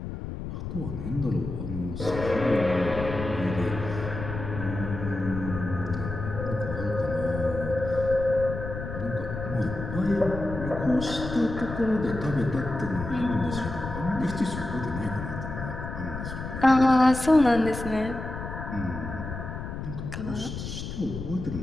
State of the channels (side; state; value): left; noise; rumble, 7 dB below the sound